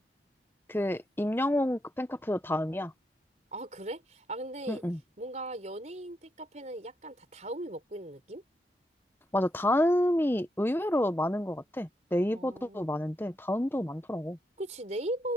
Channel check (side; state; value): both; normal; correlation 0.83